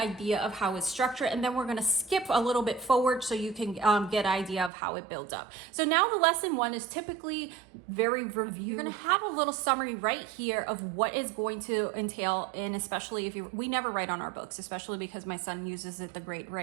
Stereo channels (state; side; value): drops out; left; at 4.7 s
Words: of how it's structured, and then we're going to skip a little bit forward so you can get an idea of how it builds up. So now the lesson 1 is typically very review. You're going to have a little summary right here of what is going to entail, and especially if we never write on our books, especially because my son uses it the grade